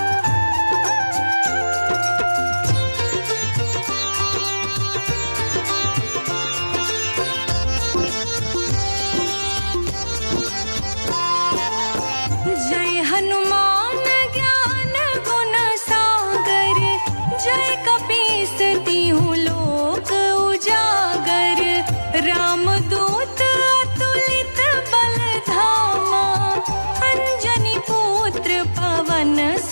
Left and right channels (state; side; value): inverted; both; correlation -1.00